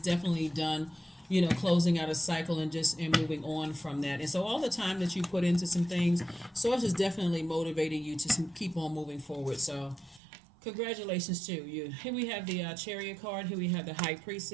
done, closing out a cycle and moving on from that. And so all the time that you put into some things, source is definitely motivating you to keep on moving forward. So congratulations to you. Here we have the Chariot card. Here we have the High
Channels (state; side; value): drops out; left; at 10.2 s